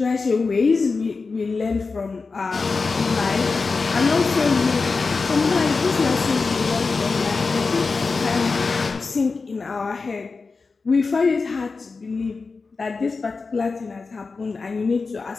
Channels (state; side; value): quieter; right; 4.3 dB